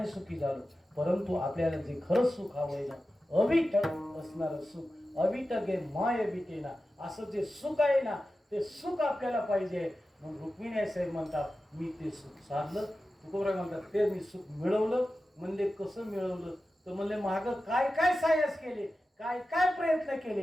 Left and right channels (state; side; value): normal; both; correlation 0.93